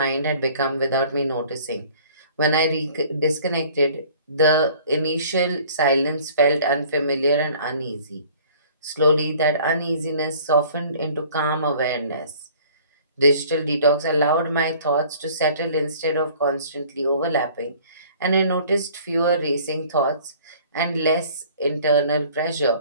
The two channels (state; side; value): inverted; both; correlation -0.52